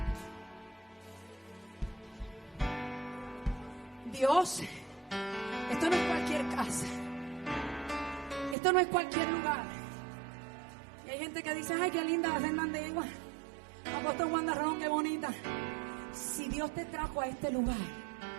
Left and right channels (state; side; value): drops out; left; at 8.6 s